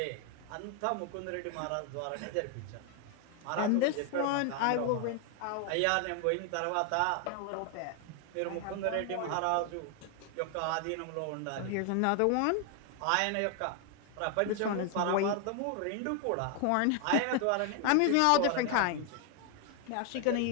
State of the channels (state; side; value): different; both; correlation 0.01